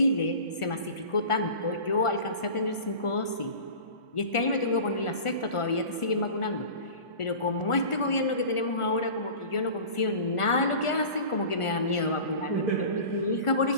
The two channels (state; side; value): late; right; 1.4 ms